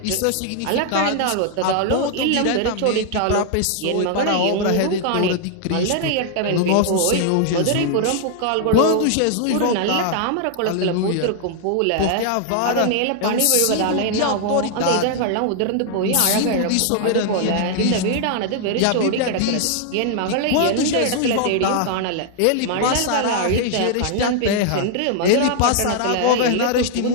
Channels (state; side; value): different; both; correlation 0.00